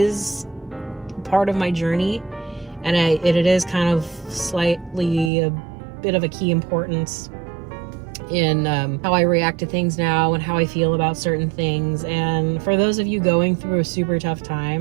part of my journey, and it is kind of slightly a bit of a key importance in how I react to things now and how I feel about certain things. And for those of you going through a super tough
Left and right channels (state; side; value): drops out; left; at 5.3 s